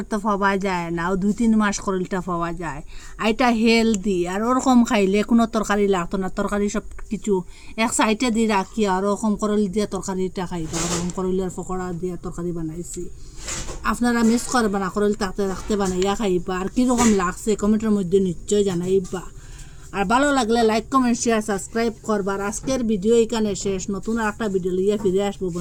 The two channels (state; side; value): identical; both; correlation 1.00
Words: তো পাওয়া যায় না, 2-3 মাস করলটা পাওয়া যায়। আর এটা হেলদি, আর ওরকম খাইলে কোনো তরকারি লাগতো না, তরকারি সব কিছু এক সাইডে দিয়ে রাখি আর ওরকম করল দিয়ে তরকারিটা খাইবা। ওরকম করলের পকোড়া দিয়ে তরকারি বানাইছি, আপনারা মিস করবা না, করল থাকতে থাকতে বানাইয়া খাইবা। আর কীরকম লাগছে কমেন্টের মধ্যে নিশ্চয় জানাইবা। আর ভালো লাগলে লাইক কমেন্ট শেয়ার সাবস্ক্রাইব করবার। আজকের ভিডিও এখানে শেষ, নতুন একটা ভিডিও লিয়ে ফিরে আসবো